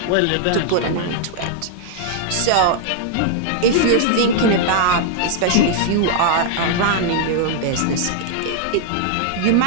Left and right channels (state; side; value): different; both; correlation -0.01